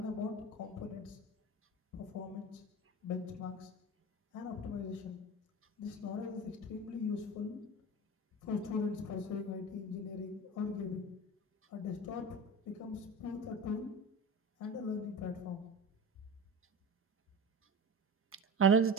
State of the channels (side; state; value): both; normal; correlation 0.32